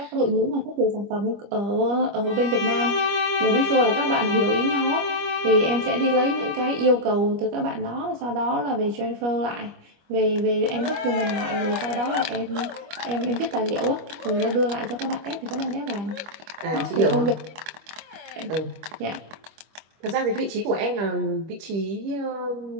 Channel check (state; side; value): late; left; 25 ms